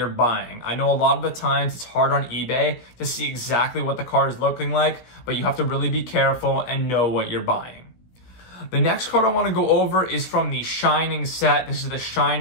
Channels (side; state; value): right; late; 17 ms